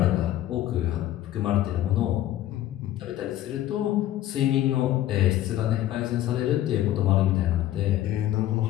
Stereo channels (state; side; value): quieter; right; 13.5 dB